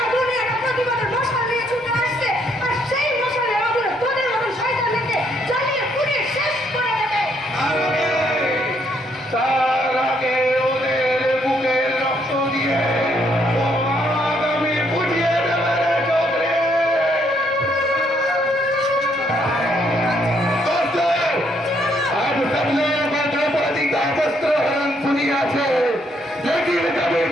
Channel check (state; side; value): normal; both; correlation 0.71